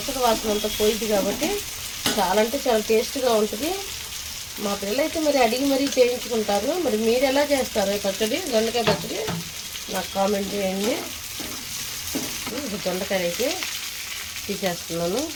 వాసన అంతా పోయింది కాబట్టి చాలా అంటే చాలా టేస్ట్గా ఉంటుంది. మా పిల్లలు అయితే మరి అడిగి మరీ చేయించుకుంటారు. మరి మీరు ఎలా చేస్తారు పచ్చడి, దొండకాయ పచ్చడి నాకు కామెంట్ చేయండి. దొండకాయ అయితే తీసేస్తున్నాను.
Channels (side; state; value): both; identical; correlation 1.00